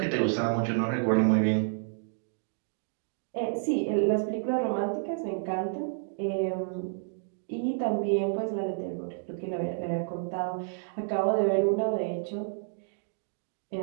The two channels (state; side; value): silent; left; digital silence